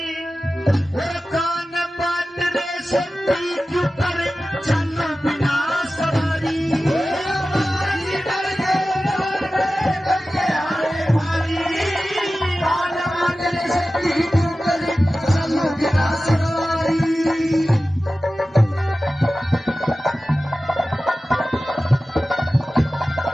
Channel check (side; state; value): both; normal; correlation 0.95